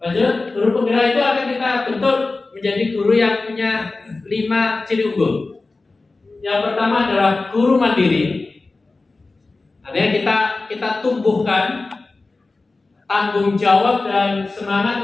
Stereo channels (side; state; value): right; quieter; 3.5 dB